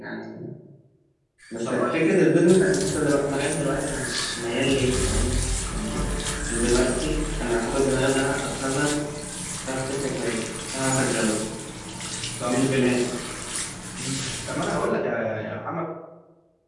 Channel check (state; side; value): identical; both; correlation 1.00